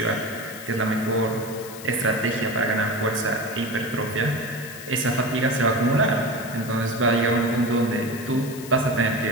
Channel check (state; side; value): noise; left; hiss, 15 dB below the sound